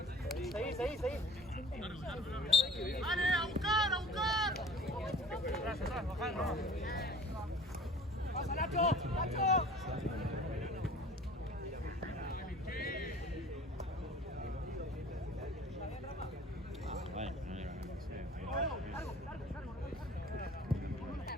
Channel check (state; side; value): normal; both; correlation 0.45